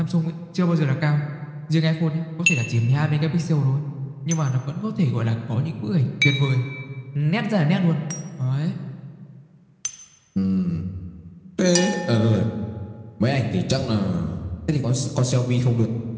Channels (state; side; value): identical; both; correlation 1.00